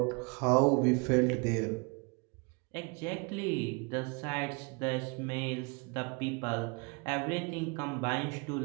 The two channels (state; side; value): quieter; left; 31.9 dB